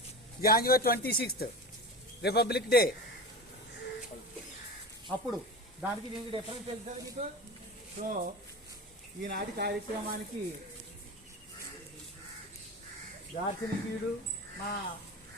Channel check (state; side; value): normal; both; correlation 0.29